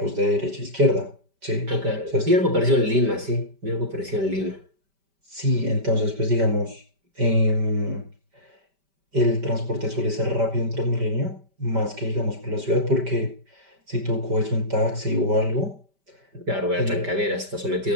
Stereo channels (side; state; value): left; late; 5.1 ms